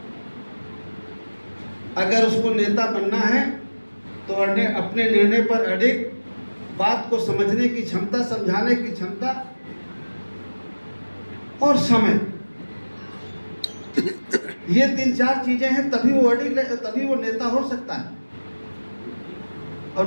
अगर उसको नेता बनना है तो अपने निर्णय पर अडिग, बात को समझने की क्षमता, समझाने की क्षमता और समय, ये 3-4 चीजें हैं, तभी वो अडिग, तभी वो नेता हो सकता है, और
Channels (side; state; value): both; inverted; correlation -1.00